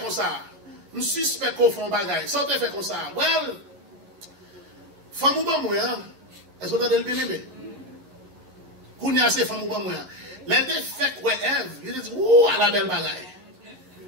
ça. Je suspect qu'on fait un bagage. Ça te fait comme ça. Well, femme ou pas moi, est-ce que vous avez le bien aimé? Quand il y a ces femmes ou pas moi, les deux fait quoi Ève, ils disent, ouh, à la belle bagaille.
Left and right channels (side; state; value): left; late; 11 ms